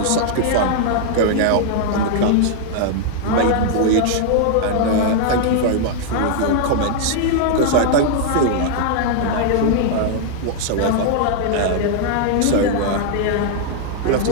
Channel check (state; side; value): different; both; correlation -0.01